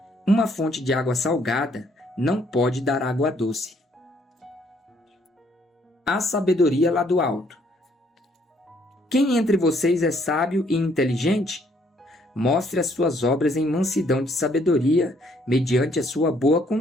uma fonte de água salgada não pode dar água doce. A sabedoria lá do alto. Quem entre vocês é sábio e inteligente? Mostre as suas obras em mansidão de sabedoria, mediante a sua boa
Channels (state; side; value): normal; both; correlation 0.67